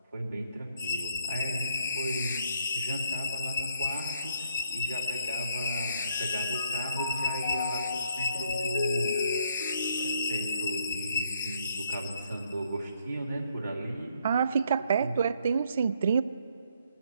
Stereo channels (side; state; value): both; inverted; correlation -0.70